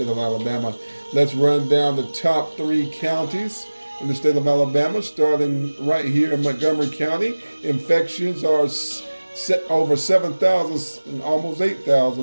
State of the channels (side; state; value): both; inverted; correlation -1.00